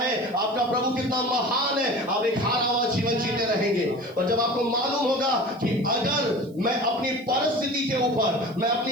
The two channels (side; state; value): right; noise; hiss, 30 dB below the sound